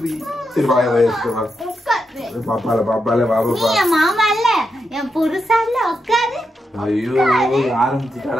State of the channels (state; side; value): normal; both; correlation 0.85